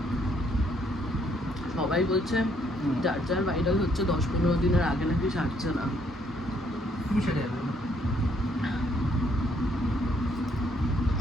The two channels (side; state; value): both; normal; correlation 0.68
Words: সবাই বলছে যার যার ভাইরাল হচ্ছে 10-15 দিনের আগে নাকি সারছে না।